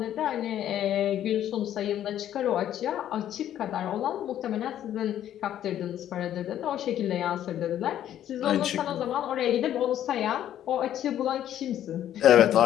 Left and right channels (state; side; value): quieter; right; 11.3 dB